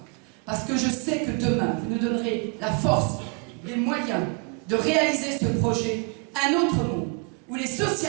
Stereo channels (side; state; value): left; quieter; 34.0 dB